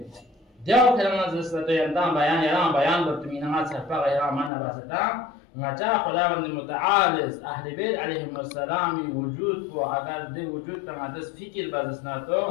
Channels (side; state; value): right; drops out; at 4.5 s